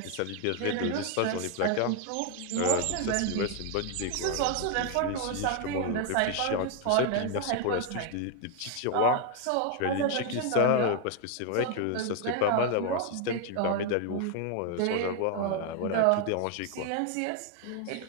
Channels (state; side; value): different; both; correlation 0.01